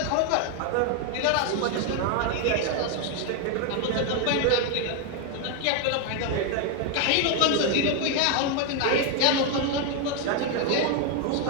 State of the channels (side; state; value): both; different; correlation 0.01